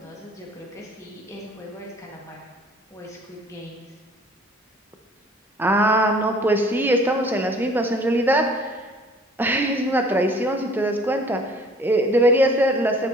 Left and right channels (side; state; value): both; normal; correlation 0.53